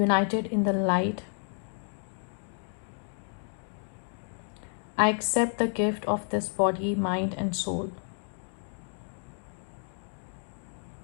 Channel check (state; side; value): silent; right; 56 dB below the other